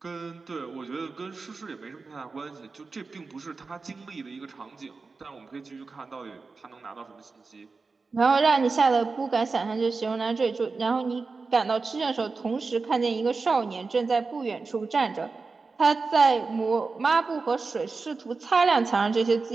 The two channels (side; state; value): left; quieter; 4.2 dB